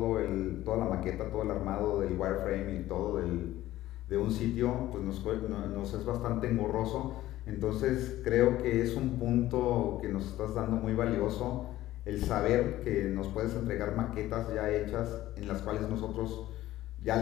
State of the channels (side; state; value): right; quieter; 15.1 dB